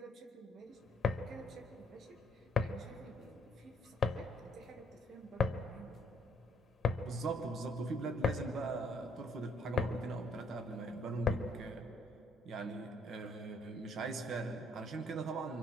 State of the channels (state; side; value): normal; both; correlation 0.68